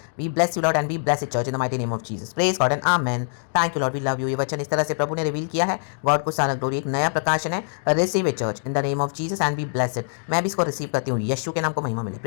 we bless you Lord and we bless it church in the mighty name of Jesus, praise God and amen. Thank you Lord, we love you. ये वचन इस तरह से प्रभु ने रिवील किया है, गॉड को सारा ग्लोरी, एक नया प्रकाशन है, receive it church in the name of Jesus and we bless it. मैं भी इसको रिसीव करती हूँ, यीशु के नाम को महिमा मिले,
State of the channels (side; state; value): right; silent; digital silence